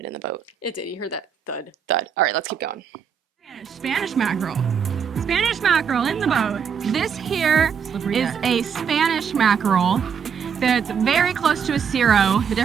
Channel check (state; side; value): quieter; left; 7.1 dB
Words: in the boat. It did. You heard that thud, thud. All right, let's keep going. Spanish mackerel. Spanish mackerel in the boat. This here is a Spanish mackerel that's very close to a Cero. The